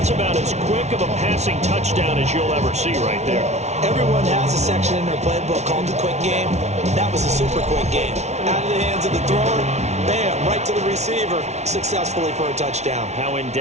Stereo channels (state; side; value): late; left; 0.32 ms